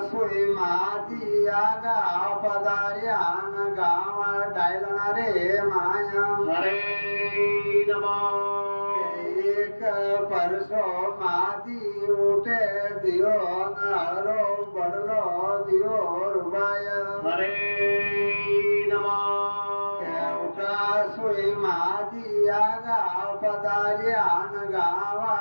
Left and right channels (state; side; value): inverted; both; correlation -1.00